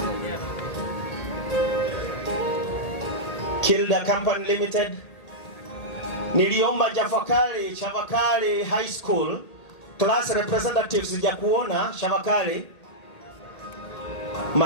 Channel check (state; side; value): late; right; 1.7 ms